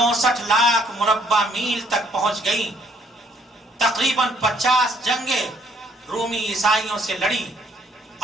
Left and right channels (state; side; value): normal; both; correlation 0.65